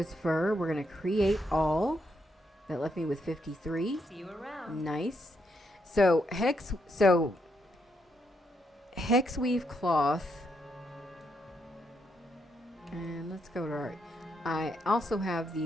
fur. We're gonna create all. That left me with 53. See you around. Nice. So hex weave cloth. And let's go to our... I also have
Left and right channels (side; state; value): both; normal; correlation 0.78